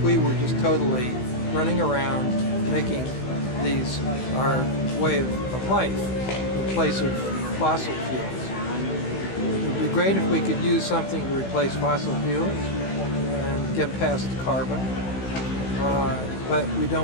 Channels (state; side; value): late; right; 16 ms